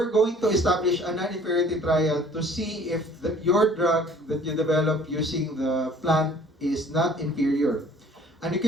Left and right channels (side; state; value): both; normal; correlation 0.53